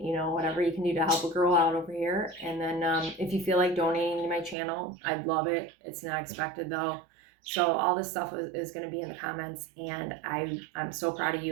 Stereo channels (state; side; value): drops out; left; at 4.5 s